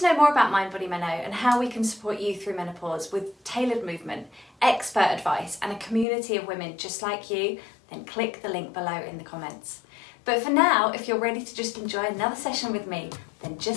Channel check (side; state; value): right; drops out; at 6.1 s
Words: know more about Mind Body Menno and how we can support you through menopause with tailored movement, expert advice and a community of women just like you, then click the link below in the comments. But for now, if you're ready to just enjoy another session with me, then